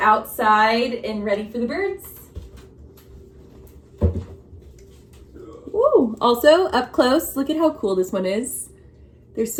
and ready for the birds. Ooh, also up close, look at how cool this one is. There's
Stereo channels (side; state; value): both; identical; correlation 1.00